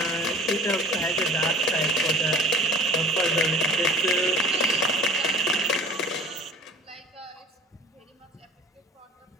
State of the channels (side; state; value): both; normal; correlation 0.45